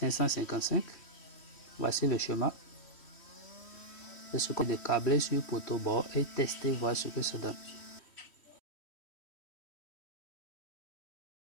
Voici le schéma. C'est ce qu'on a câblé sur poteau bord et tester, voir ce que ça donne.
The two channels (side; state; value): right; late; 3.1 ms